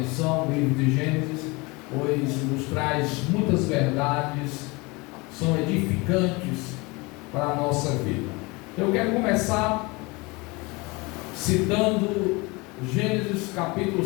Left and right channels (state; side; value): quieter; right; 25.6 dB